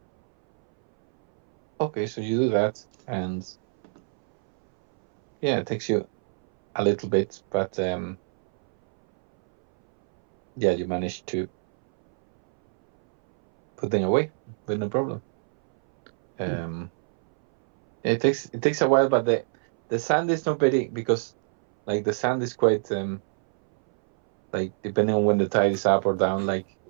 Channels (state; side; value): silent; left; 62 dB below the other